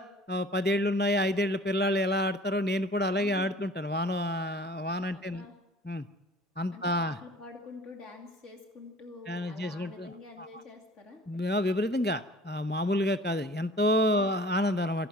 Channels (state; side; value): normal; both; correlation 0.48